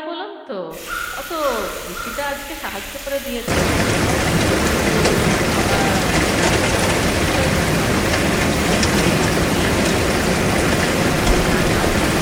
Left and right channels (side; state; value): both; identical; correlation 1.00